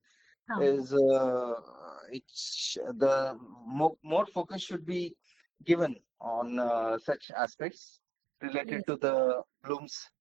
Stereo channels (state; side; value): drops out; left; at 7.2 s